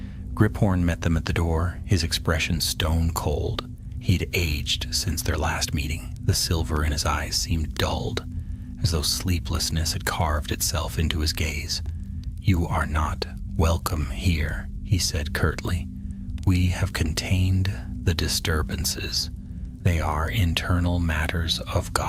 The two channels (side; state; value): both; identical; correlation 1.00